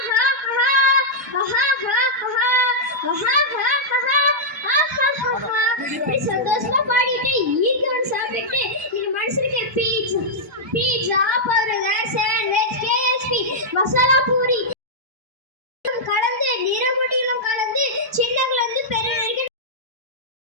சந்தோஷமா பாடிட்டு ஈக்கவன் சாப்பிட்டு நீங்க மனுஷனுக்கு pizza, burger, sandwich, KSP, masala puri கலந்து நிறமுடியிலும் கலந்து சின்னங்கள் வந்து பெரிய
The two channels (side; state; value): both; normal; correlation -0.08